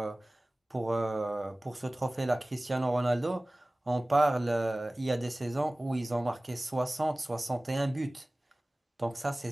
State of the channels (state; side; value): normal; both; correlation 0.98